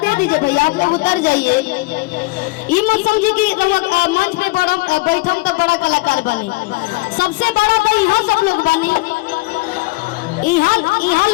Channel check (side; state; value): right; quieter; 23.6 dB